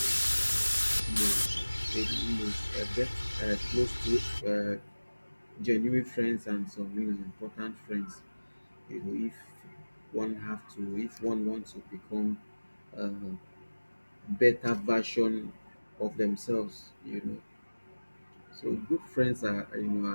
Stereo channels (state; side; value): inverted; both; correlation -1.00